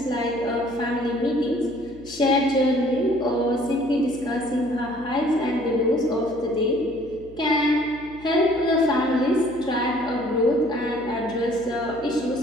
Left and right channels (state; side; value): noise; left; hum, 21 dB below the sound